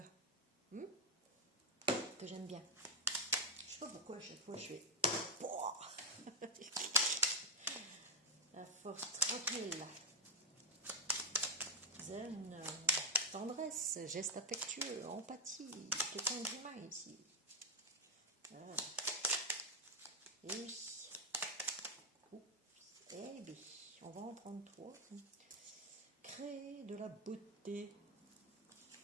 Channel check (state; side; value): normal; both; correlation 0.00